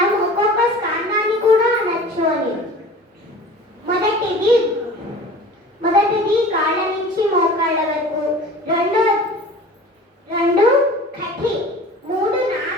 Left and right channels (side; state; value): both; normal; correlation 0.41